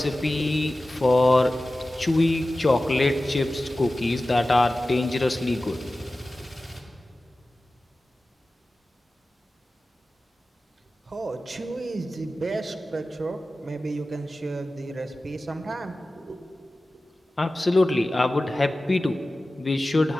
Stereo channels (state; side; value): normal; both; correlation 0.96